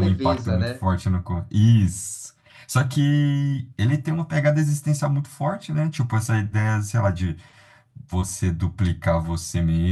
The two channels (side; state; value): both; identical; correlation 1.00